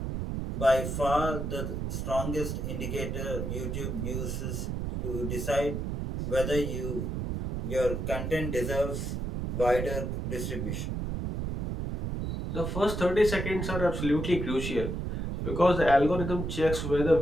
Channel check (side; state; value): right; noise; rumble, 3 dB below the sound